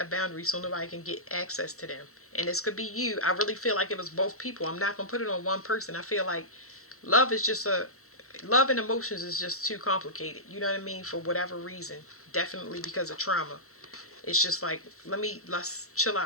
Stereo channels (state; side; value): late; right; 0.64 ms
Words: a boundary so nobody can get access to them. And this could be you. I really feel like it was both people. I'm not going to put it on one person. I feel like love and emotions is just too complicated. You know what I mean? For whatever reason. Definitely because of trauma. It's just like, let's chill